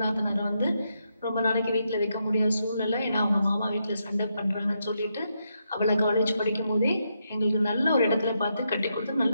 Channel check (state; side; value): inverted; both; correlation -0.81